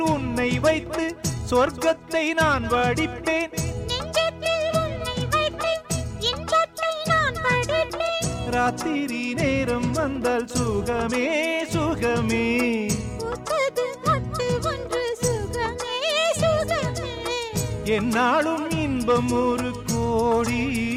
சொர்க்கத்தை நான் வடிப்பேன், நெஞ்சத்தில் உன்னை வைத்து இன்பத்தை நான் படைப்பேன். ராத்திரி நேரம் வந்தால் சுகமே சுகமே, பூத்தது மொட்டு ஒன்று சுகமே சுகமே. என்னாலும் இன்பம் ஒரு கோடி.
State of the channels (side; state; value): both; identical; correlation 1.00